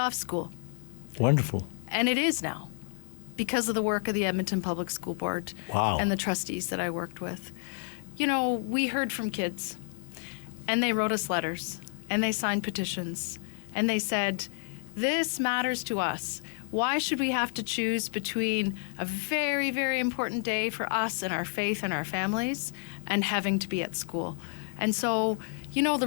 school. Wonderful. And it is now, because of the work of the Edmonton Public School Board and the trustees that I worked with. You know, we heard from kids, and they wrote us letters, and they signed petitions, and they said, this matters to us. Why should we have to choose between a very, very important day for us and our faith and our families and having to be at school? And so, you know,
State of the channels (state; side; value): silent; right; 58 dB below the other